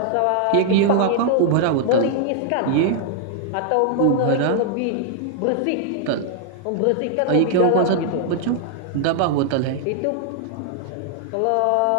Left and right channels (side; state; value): both; different; correlation -0.01